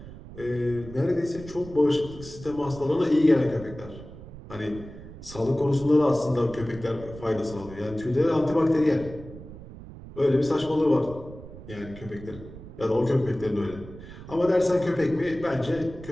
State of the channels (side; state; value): right; noise; rumble, 15 dB below the sound